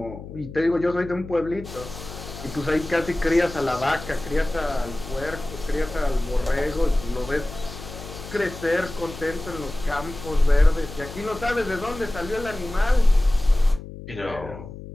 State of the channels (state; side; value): noise; left; hum, 13 dB below the sound